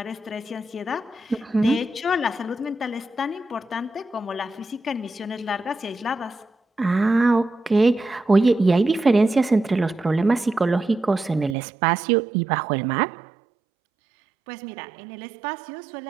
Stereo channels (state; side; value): drops out; left; at 11.6 s